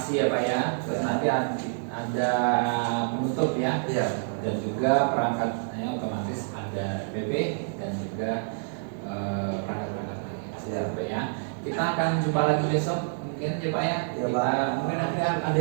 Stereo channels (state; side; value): silent; left; digital silence